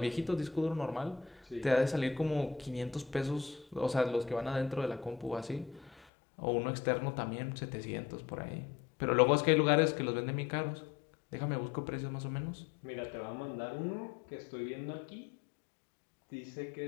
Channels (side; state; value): right; drops out; at 6.1 s